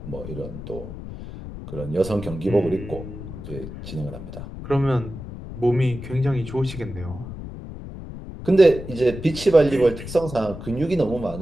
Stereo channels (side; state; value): left; noise; rumble, 11 dB below the sound